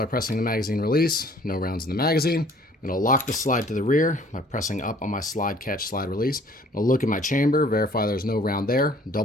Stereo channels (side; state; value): both; normal; correlation 0.55